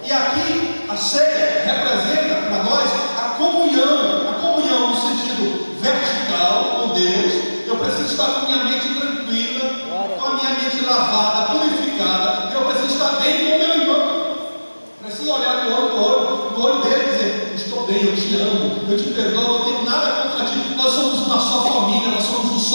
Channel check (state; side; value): inverted; both; correlation -1.00